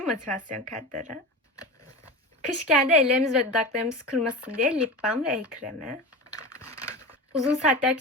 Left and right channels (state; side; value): normal; both; correlation 0.28